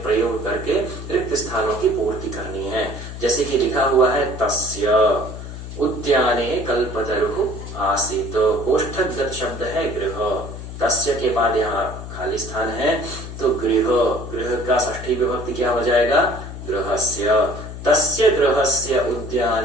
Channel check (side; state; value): left; noise; hum, 10 dB below the sound